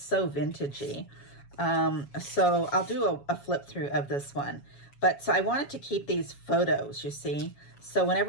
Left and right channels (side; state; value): right; late; 7.2 ms